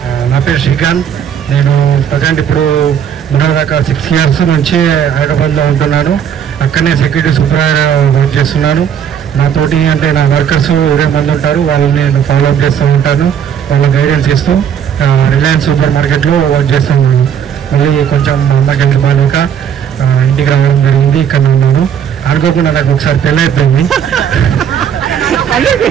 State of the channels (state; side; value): quieter; left; 8.5 dB